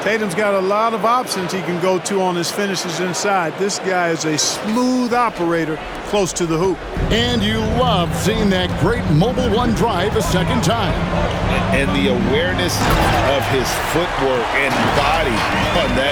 Tatum's got a lot of options he can go to on his finishes inside. This guy is a smooth operator close to the hoop. And you love seeing that great mobile one drive a second time. And the awareness of his footwork and body on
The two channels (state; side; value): identical; both; correlation 1.00